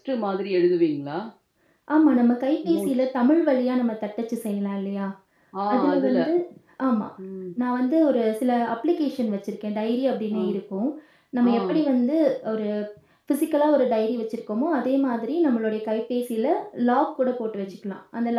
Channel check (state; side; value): identical; both; correlation 1.00